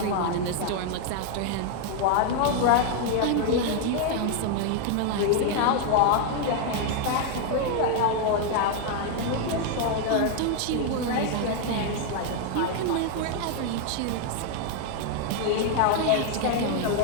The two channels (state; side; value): different; both; correlation 0.00